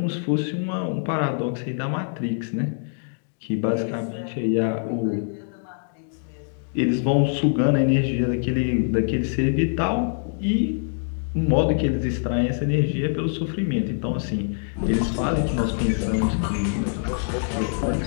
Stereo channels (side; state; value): right; silent; digital silence